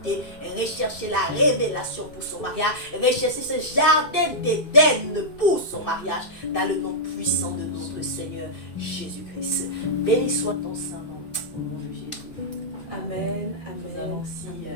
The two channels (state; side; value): late; right; 2.6 ms